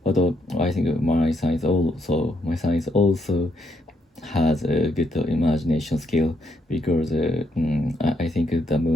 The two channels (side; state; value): both; normal; correlation 0.75